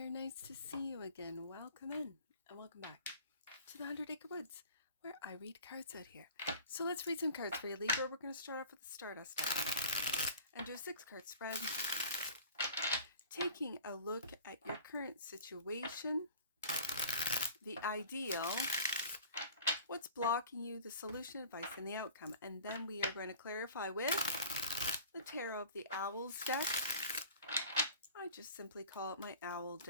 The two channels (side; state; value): both; inverted; correlation -0.44